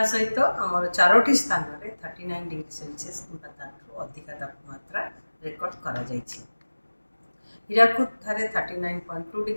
सहित आमर 4टी स्थान रे 39 डिग्री सेल्सियस किंबा ताठू अधिक तापमात्रा रेकर्ड करा जायछि। हीराकुद ठारे 39.2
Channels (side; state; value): both; inverted; correlation -1.00